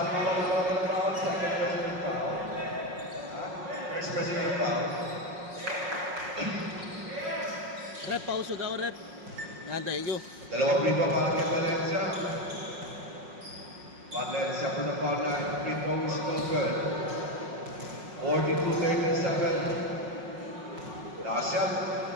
na foul. Second president foul. First president foul. Rep, pauso daw, rep. Yan, thank you. Dalawang free throw para kay Valencia. Valencia for the foul line. Free throw is no good. 42-37. Last shot.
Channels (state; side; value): late; left; 5.5 ms